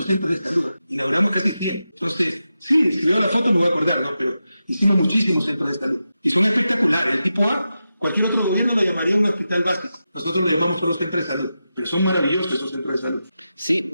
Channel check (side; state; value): both; inverted; correlation -0.90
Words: centros de salud, inauguramos casi 100. Entonces, sí, si veo la foto me voy a acordar, ¿no? Pero hicimos muchísimos centros de salud. Y son espectaculares. El tipo A, cualquier otro gobierno lo llamaría un hospital básico. Nosotros lo llamamos solo centros de salud. Pero son maravillosos esos centros de salud. Sí,